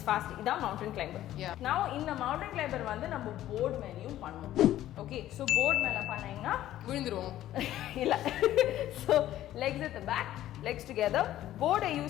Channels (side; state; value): right; quieter; 13.3 dB